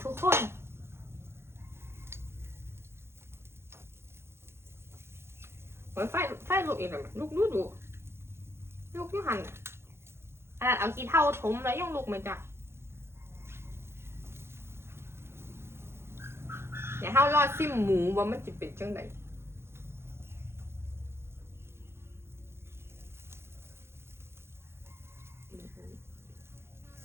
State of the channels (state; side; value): late; left; 0.12 ms